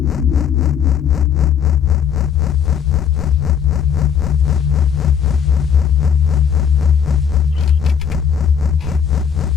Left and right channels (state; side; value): quieter; right; 7.8 dB